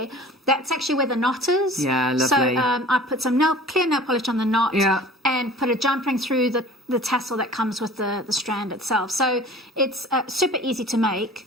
that's actually where the knot is. Yeah, lovely. So I put some clear nail polish on the knot, and put a jump ring through the tassel that comes with the strand itself. So it's super easy to make,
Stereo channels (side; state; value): both; normal; correlation 0.44